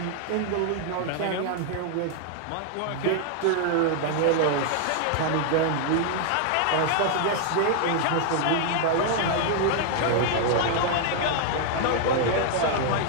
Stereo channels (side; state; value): both; different; correlation 0.00